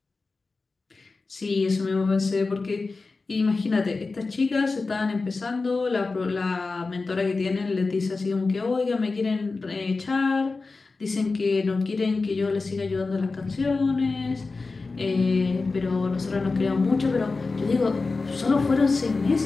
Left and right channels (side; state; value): right; quieter; 3.9 dB